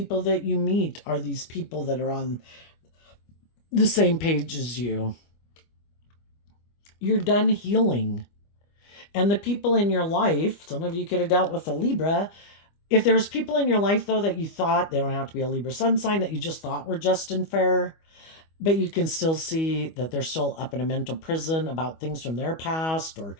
that you meet are these people that are on the same page as you. You're done healing. And the people in your life, some of you could have dealt with a Libra. If there's people in your life, though, that you thought, they don't have to be a Libra sun sign, that you just thought were just and fair, But you can still see that they're still up in a mental prison about things from their past, or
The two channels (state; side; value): late; right; 25 ms